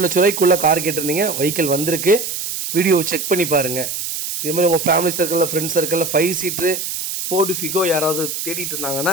லட்ச ரூபாய்க்குள்ளே கார் கேட்டிருந்தீங்க. வெஹிக்கிள் வந்திருக்கு. வீடியோவை செக் பண்ணி பாருங்கள். இதே மாதிரி உங்கள் ஃபேமிலி சர்க்கிளில், ஃப்ரெண்ட்ஸ் சர்க்கிளில் 5 சீட்ரு ஃபோர்டு ஃபிகோ யாராவது தேடிட்டு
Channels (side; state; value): right; noise; hiss, 5 dB below the sound